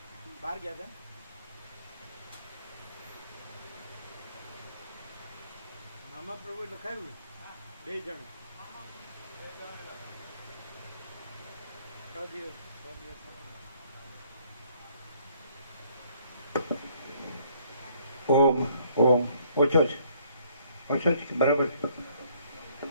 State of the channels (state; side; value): inverted; both; correlation -0.64